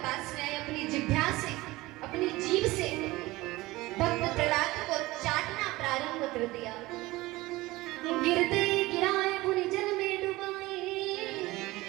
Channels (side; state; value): left; quieter; 19.6 dB